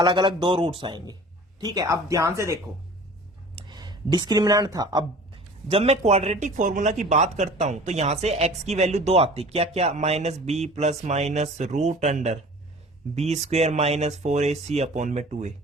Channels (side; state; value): both; normal; correlation 0.44